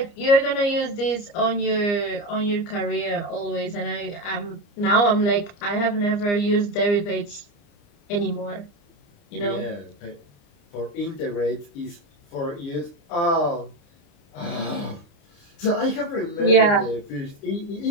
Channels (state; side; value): late; right; 29 ms